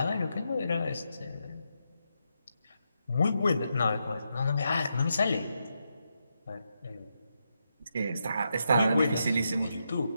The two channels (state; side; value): inverted; both; correlation -0.84